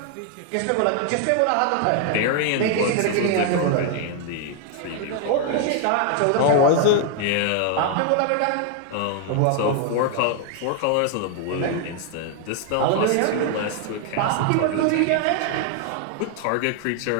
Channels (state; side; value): different; both; correlation 0.00